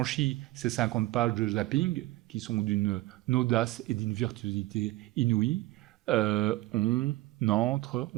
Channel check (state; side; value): quieter; left; 18.3 dB